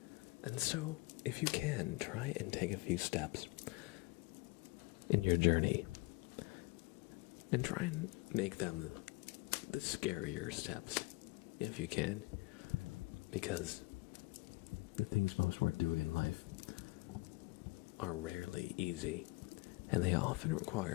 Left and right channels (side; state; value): right; quieter; 24.4 dB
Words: And so, if you can, try and take a few steps in your journey. And try and make them the scarier steps, if you can. Because the things most worth doing in life are rarely easy, and they often